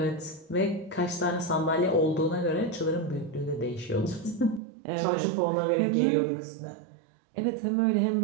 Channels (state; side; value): drops out; left; at 4.6 s